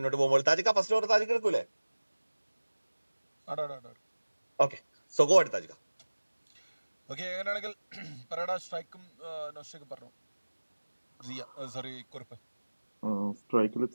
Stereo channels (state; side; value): inverted; both; correlation -1.00